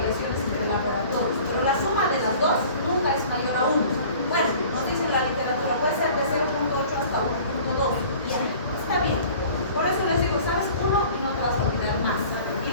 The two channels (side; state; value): both; inverted; correlation -0.46